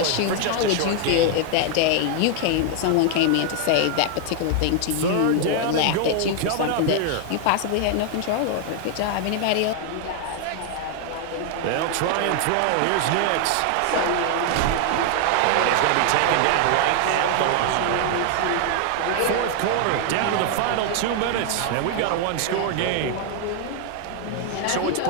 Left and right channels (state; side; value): different; both; correlation 0.00